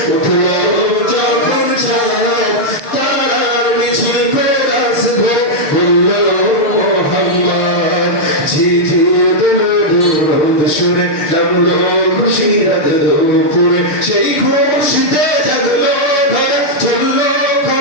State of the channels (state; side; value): late; right; 6.7 ms